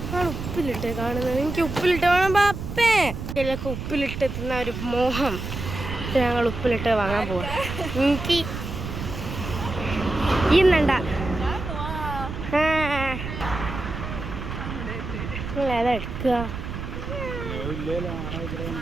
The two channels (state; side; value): noise; right; rumble, 6 dB below the sound